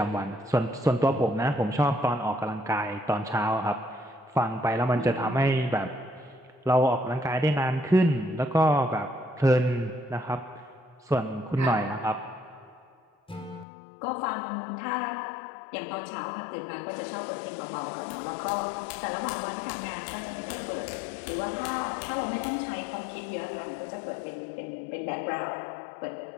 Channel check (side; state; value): right; drops out; at 13.7 s